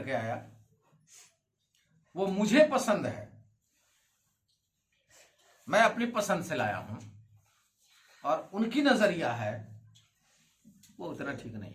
के आया, वो मुझे पसंद है, मैं अपनी पसंद से लाया हूं, और उनकी नजरिया है वो उतना ठीक नहीं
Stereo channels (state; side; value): identical; both; correlation 1.00